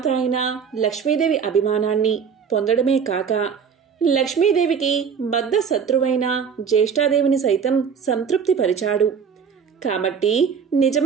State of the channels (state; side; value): quieter; left; 6.6 dB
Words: అయిన లక్ష్మీదేవి అభిమానాన్ని పొందడమే కాక లక్ష్మీదేవికి బద్ధ శత్రువైన జ్యేష్ఠాదేవిని సైతం సంతృప్తిపరిచాడు. కాబట్టి